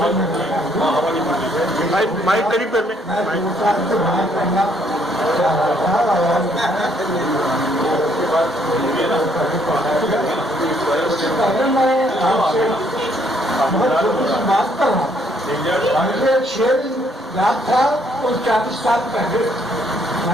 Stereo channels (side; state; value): both; normal; correlation 0.68